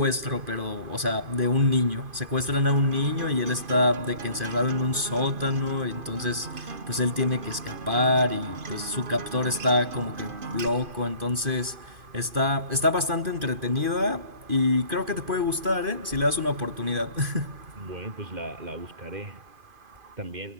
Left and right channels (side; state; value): left; late; 2.5 ms